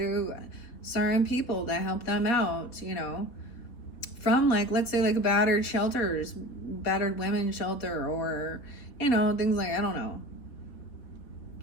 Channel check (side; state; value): right; late; 3.9 ms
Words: certain people to help them out, from, like, let's say, like a battered women shelter, or, things like, I don't know,